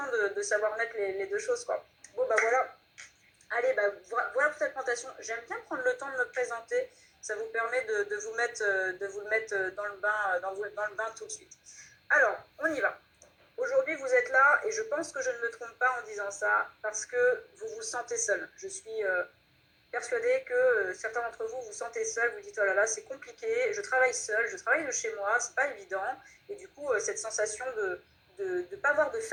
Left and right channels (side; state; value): both; identical; correlation 1.00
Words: de savoir mettre les deux choses, quoi. Bon bah voilà. Allez, bah, voilà pour cette présentation. J'aime bien prendre le temps de me présenter. Ça vous permet de vous le mettre dans le bain, dans le bain tout de suite. Alors, on y va. Aujourd'hui, vous êtes là et je pense que je ne me trompe pas en disant ça parce que vous vous sentez seul. Je suis persuadée que certains d'entre vous vous sentez seul. Vous dites oh là là, c'est compliqué. Je travaille seul, je travaille de chez moi, c'est pas évident. Et du coup, cette sensation de ne pas avoir de